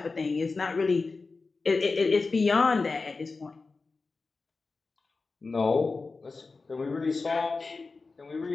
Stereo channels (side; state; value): right; quieter; 4.0 dB